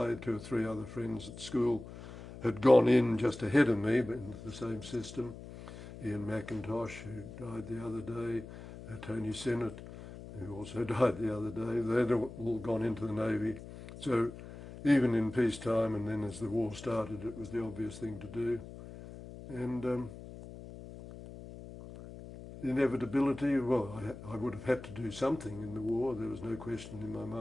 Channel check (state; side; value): noise; left; hum, 13 dB below the sound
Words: 2 or 3 other friends at school had gone in just ahead of me, but into the same system. Ian McIntosh, who died the other day, Tony Sinnott, who also died the other day. They'd all gone into the Navy. So even in peacetime, and then as the war started, it was the obvious thing to do. And inevitability. Well, I would have had to do something in the war. There was no question in my